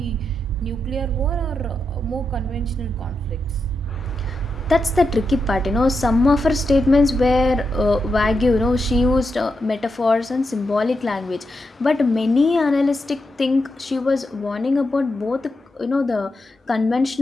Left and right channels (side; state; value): both; normal; correlation 0.86